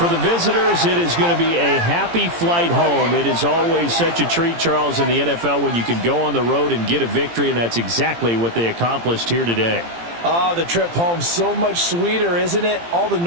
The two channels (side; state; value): left; late; 17 ms